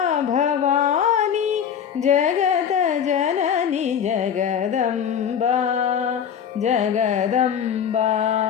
भवानी जगत जननी जगदम्बा जगदम्बा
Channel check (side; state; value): right; quieter; 8.2 dB